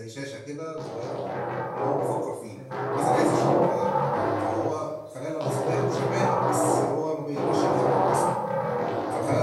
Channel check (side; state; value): both; identical; correlation 1.00